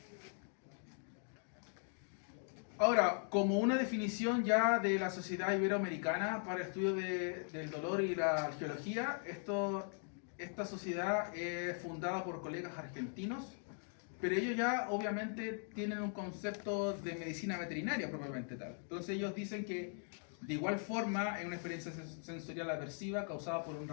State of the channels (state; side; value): silent; right; 51 dB below the other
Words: Ahora, como una definición ya de la Sociedad Iberoamericana para el estudio del dolor y la geología, esta sociedad es fundada por colegas argentinos, pero ellos ya obviamente tienen un concepto de medicina veterinaria propiamente tal. Entonces ellos dicen que de igual forma es una experiencia sensorial aversiva causada por un